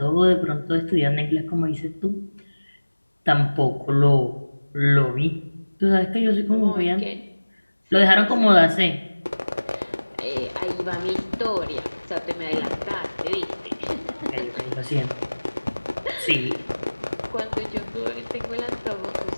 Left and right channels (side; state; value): both; inverted; correlation -1.00